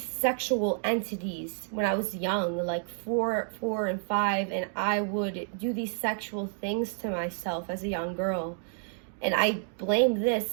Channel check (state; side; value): silent; left; digital silence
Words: entities when I was young, like 4 and 5, and I would do these sexual things to myself as a young girl. And I blame